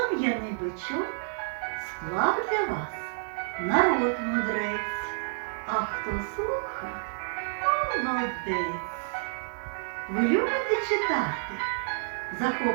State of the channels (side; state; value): left; silent; digital silence